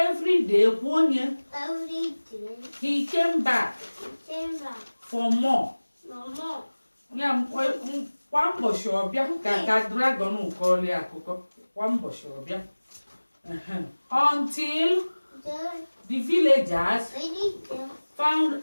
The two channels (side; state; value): both; inverted; correlation -1.00